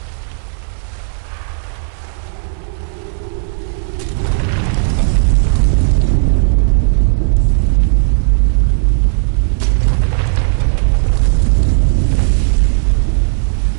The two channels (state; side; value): silent; left; digital silence